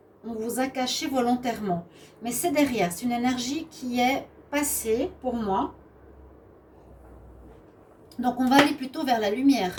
caché volontairement. Mais c'est derrière, c'est une énergie qui est passée pour moi. Donc on va aller plutôt vers la lumière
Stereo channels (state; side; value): identical; both; correlation 1.00